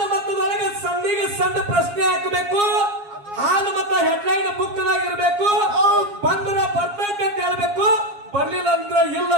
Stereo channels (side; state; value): left; late; 7.3 ms